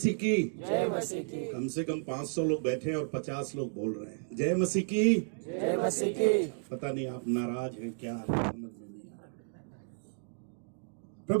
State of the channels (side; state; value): left; silent; digital silence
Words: की। जय मसीह की, कम से कम 500 लोग बैठे हैं और 50 लोग बोल रहे हैं जय मसीह की। जय मसीह की। पता नहीं आप नाराज हैं क्या, समझ में नहीं आ रहा।